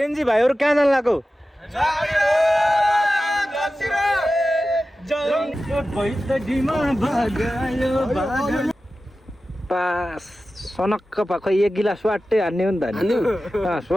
भाइहरु कहाँ जान लाग्यो पास सनक्क पाखो एक गिलास स्वाट्टै हान्ने हो नि त नि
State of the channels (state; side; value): normal; both; correlation 0.94